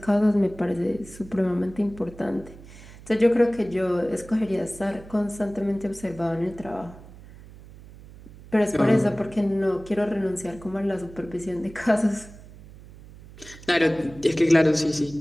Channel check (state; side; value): noise; right; hum, 19 dB below the sound